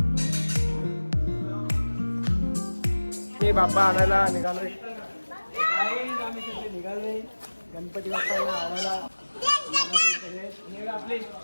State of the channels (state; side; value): inverted; both; correlation -1.00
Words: मी बाप्पा आणायला निघालोय. निघाले गणपती बाप्पाला आणायला. आपली